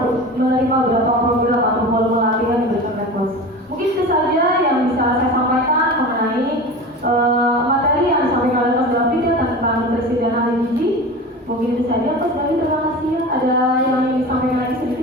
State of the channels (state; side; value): normal; both; correlation 0.32